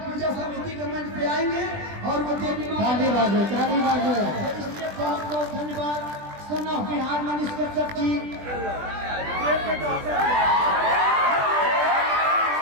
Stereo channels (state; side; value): late; left; 20 ms